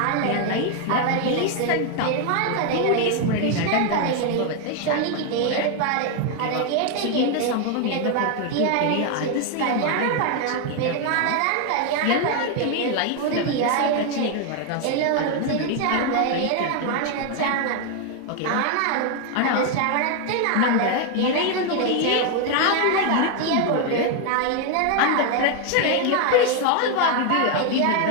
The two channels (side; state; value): both; different; correlation 0.01